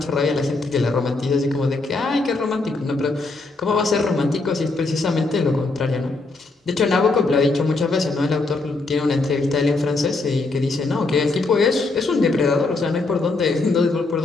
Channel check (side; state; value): right; quieter; 3.4 dB